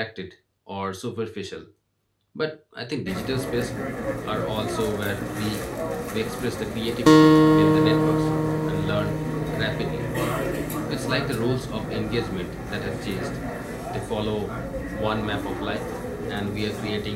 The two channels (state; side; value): identical; both; correlation 1.00